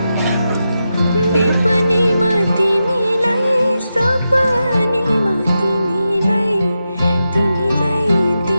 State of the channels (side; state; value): both; inverted; correlation -0.89